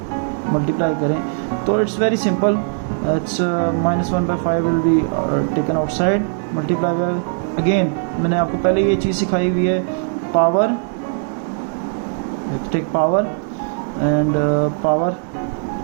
मल्टीप्लाई करें, तो it's very simple. It's minus 1 by 5 will be taken outside, multiply by, again मैंने आपको पहले ये चीज़ सिखाई हुई है, power, take power and power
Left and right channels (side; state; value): left; silent; digital silence